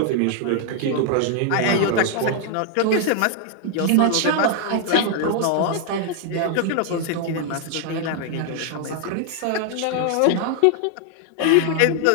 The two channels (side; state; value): both; different; correlation 0.00